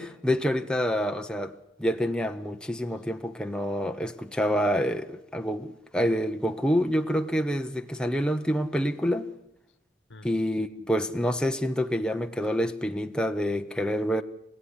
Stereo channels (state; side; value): normal; both; correlation 0.84